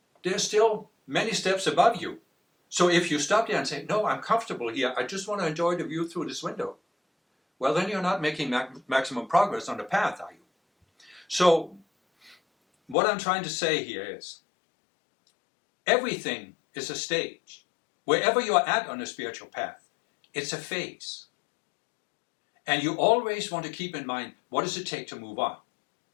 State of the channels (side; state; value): right; drops out; at 13.0 s